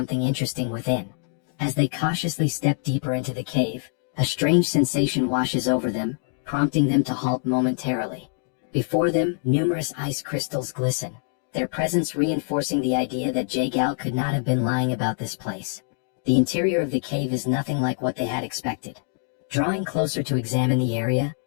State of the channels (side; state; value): right; silent; 62 dB below the other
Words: interesting within. As they cautiously step deeper into the cave, a strange sensation washes over them, prompting them to halt momentarily. Before them, numerous ice crystals glisten, their presence reinforcing the idea that Jagal could not have been lying about this place. The interior of the cave is nothing like what they had expected. Drawing closer to examine the area,